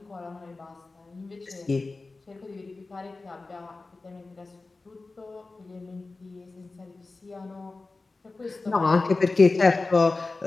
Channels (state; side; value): quieter; right; 3.6 dB